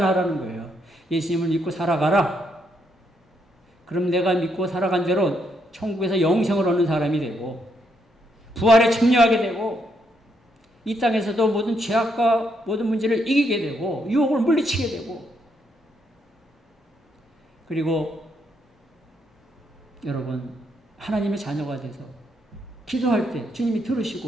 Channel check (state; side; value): normal; both; correlation 0.76